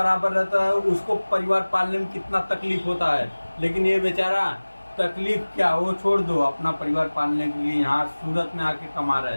रहता है उसको परिवार पालने में कितना तकलीफ होता है, लेकिन ये बेचारा तकलीफ क्या, वो छोड़ दो, अपना परिवार पालने के लिए यहाँ सूरत में आके कमा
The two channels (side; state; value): both; inverted; correlation -1.00